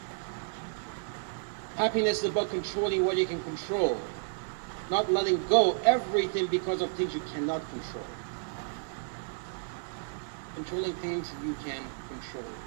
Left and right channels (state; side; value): silent; left; digital silence